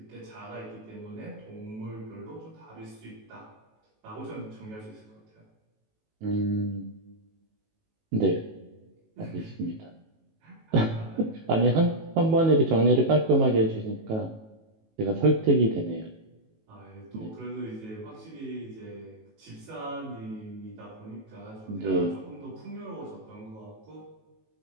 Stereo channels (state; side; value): late; left; 18 ms